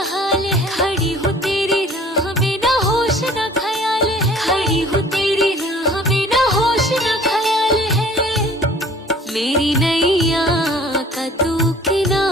हाल है, खड़ी हूँ तेरी राह में ना होश न ख्याल है, खड़ी हूँ तेरी राह में ना होश न ख्याल है। मेरी नैया का तू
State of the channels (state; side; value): normal; both; correlation 0.50